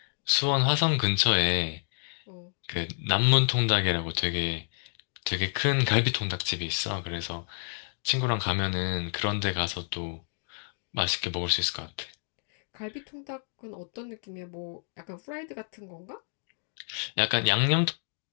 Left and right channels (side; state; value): right; silent; digital silence